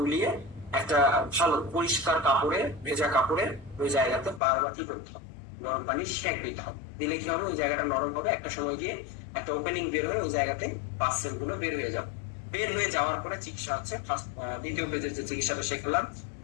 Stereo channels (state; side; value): drops out; right; at 4.4 s